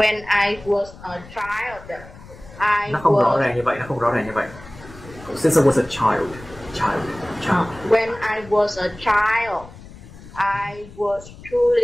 I was a child. Nó không rõ ràng như vậy, Since I was a child. When I was a child, I was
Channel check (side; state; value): left; noise; rumble, 18 dB below the sound